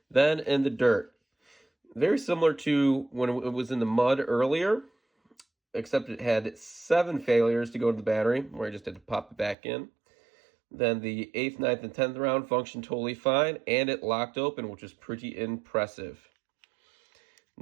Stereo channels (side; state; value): left; drops out; at 9.6 s